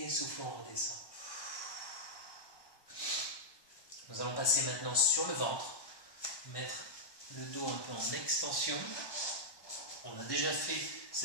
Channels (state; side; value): late; right; 1.1 ms